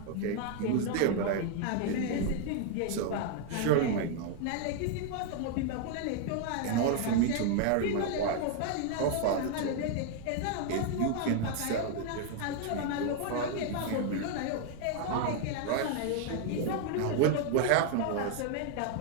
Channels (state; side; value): different; both; correlation 0.00